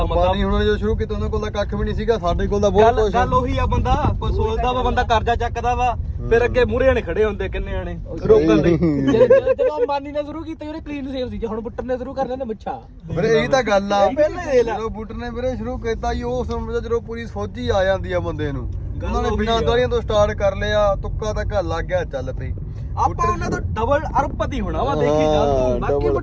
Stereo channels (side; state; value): both; identical; correlation 1.00